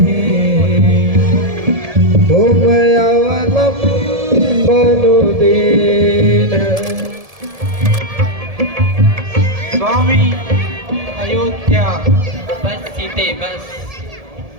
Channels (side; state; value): left; late; 1.7 ms